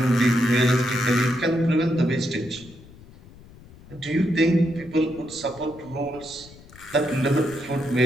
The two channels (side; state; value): left; noise; rumble, 22 dB below the sound